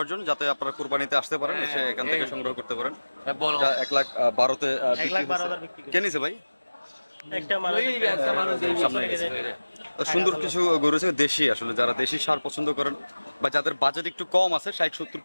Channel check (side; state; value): both; inverted; correlation -1.00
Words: জন্য, যাতে আপনারা কুরবানিতে আসতে পারেন, এসে এখান থেকে সংগ্রহ করতে পারেন। 1,12,000-তে কে নিছে ভাই? সুন্দর কিছু গরু আছে দেশি, আসলে যারা দেশি সার পছন্দ করেন বা যাদের বাজেট একটু কম আছে, 60, 70,